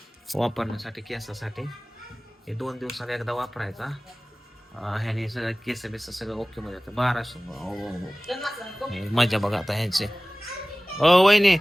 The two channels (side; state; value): both; normal; correlation 0.98